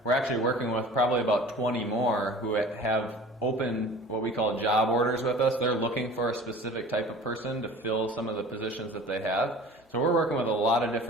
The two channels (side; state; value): both; normal; correlation 0.43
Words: We're actually working with probably about 20 more who have open what we call job orders with us. They're looking for a specific type of person to fill some of the positions that they have. So we're working with a lot of